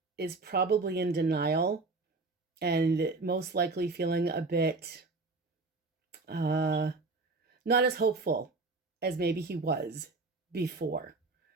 is probably in denial and most likely feeling a bit not as hopeful as maybe he was before.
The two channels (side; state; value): left; quieter; 3.6 dB